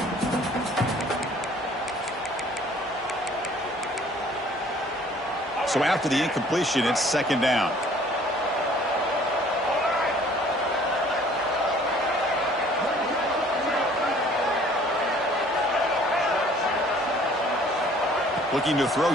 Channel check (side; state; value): both; normal; correlation 0.55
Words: So after the incompletion, it's second down. Looking to throw